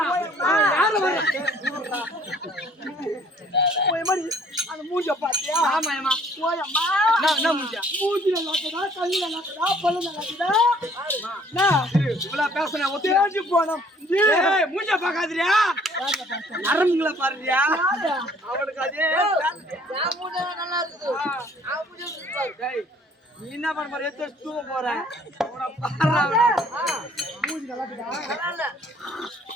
அவன் யாரு வர்றான்? அந்த மூஞ்ச பாத்தியா? ஆமாமா. ஓயம்மா என்ன மூஞ்சா? மூஞ்சில நாக்குதா, கல்லுல நாக்குதா, பல்லுல நாக்குதா? இவ்வளவு பேசுன தேஞ்சு போனோம். ஏய் மூஞ்ச பாக்காதறியா? நரம்புங்கள பாருறியா? அவளுக்கு அதே நான் மூஞ்ச நல்லா இருக்குது. நான் மூஞ்ச பாரு. டேய் நீ என்ன பண்ண போற? எத்த தூங்க போற. அவன பாறா. மூஞ்சி நல்லா இருக்குதா? நல்லா இல்ல.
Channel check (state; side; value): normal; both; correlation 0.58